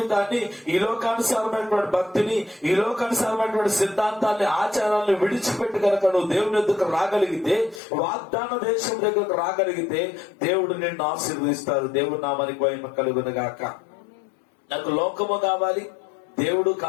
ఈ లోకానుసారమైనటువంటి భక్తిని, ఈ లోకానుసారమైనటువంటి సిద్ధాంతాన్ని, ఆచారాలను విడిచిపెట్టి కనుక నువ్వు దేవుని ఎదుకు రాగలిగితే, వాగ్దాన దేశం దగ్గరకు రాగలిగితే దేవుడు నిన్ను ఆశీర్వదిస్తాడు. దేవుడి నామానికి మహిమ కలుగును గాక. నాకు లోకము కావాలి, దేవుడు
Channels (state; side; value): drops out; right; at 7.8 s